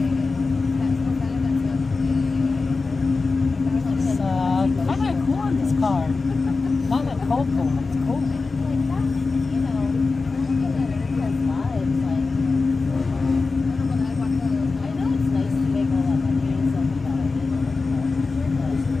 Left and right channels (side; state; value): right; quieter; 4.0 dB